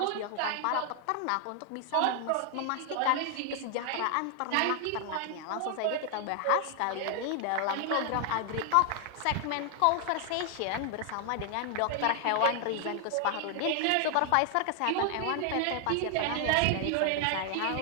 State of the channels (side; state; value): both; different; correlation 0.00